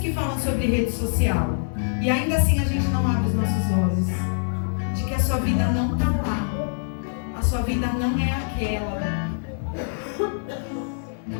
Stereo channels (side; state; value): right; silent; digital silence